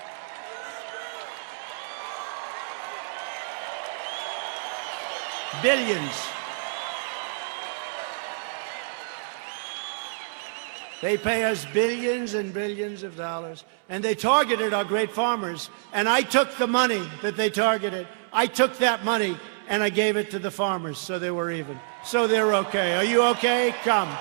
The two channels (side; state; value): left; silent; digital silence